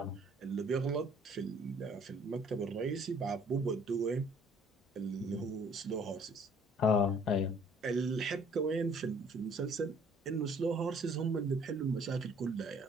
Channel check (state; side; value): normal; both; correlation 0.58